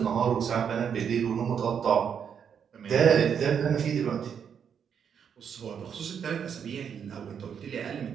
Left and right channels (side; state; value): left; quieter; 7.6 dB